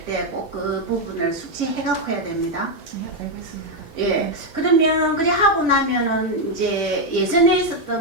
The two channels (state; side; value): normal; both; correlation 0.03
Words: 때 꼭 그 부분을 숙지해갖고 해야 됩니다. 예, 알겠습니다. 예. 그러면 그래 하고 나면은 이제 예전에